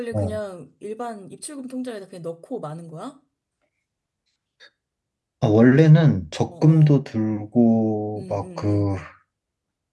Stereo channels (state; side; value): identical; both; correlation 1.00